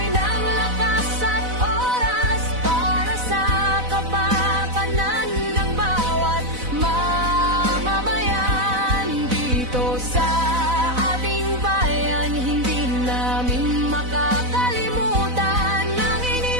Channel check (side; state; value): left; late; 4.0 ms